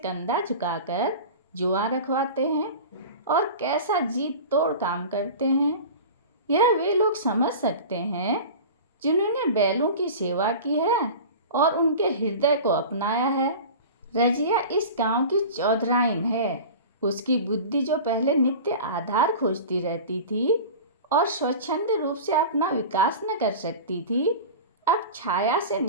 झुकाकर जुआ रखवाते हैं और कैसा जीत तोड़ काम करते हैं। यह वे लोग समझ सकते हैं जिन्होंने बैलों की सेवा की है और उनके हृदय को अपनाया है। रजिया इस गांव की चौधराइन है। उसकी बुद्धि जो पहले नित्य आधार खोजती रहती थी और स्वच्छंद रूप से अपना विकास न कर सकती थी, अब छाया से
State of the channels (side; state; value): both; inverted; correlation -0.34